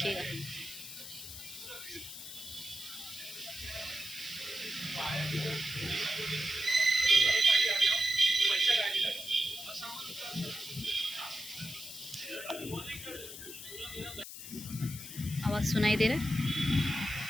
आवाज़ सुनाई दे रहा है?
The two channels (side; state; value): left; noise; hiss, 11 dB below the sound